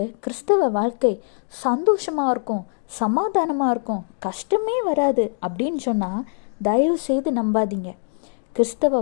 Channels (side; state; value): right; silent; digital silence